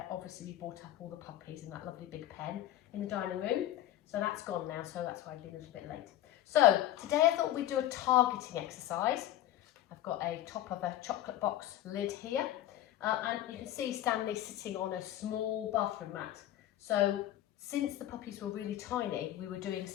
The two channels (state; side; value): quieter; right; 13.1 dB